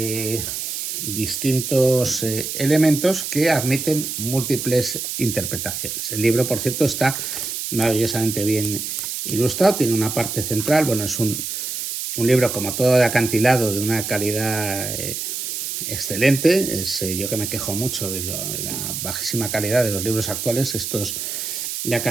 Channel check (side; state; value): right; noise; hiss, 4 dB below the sound